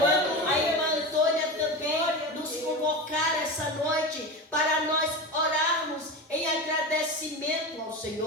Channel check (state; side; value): normal; both; correlation 0.25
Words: a irmã Antônia também nos convocar essa noite para nós orarmos em agradecimento ao